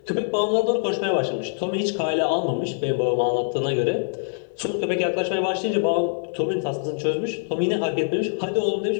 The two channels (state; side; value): silent; right; 63 dB below the other